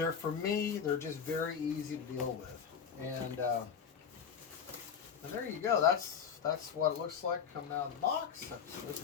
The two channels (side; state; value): right; quieter; 7.2 dB